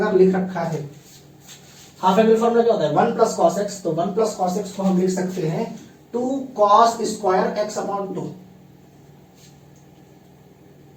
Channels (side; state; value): both; identical; correlation 1.00